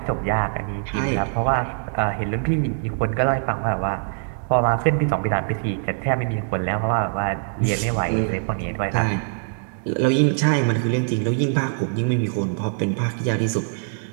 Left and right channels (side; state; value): left; silent; digital silence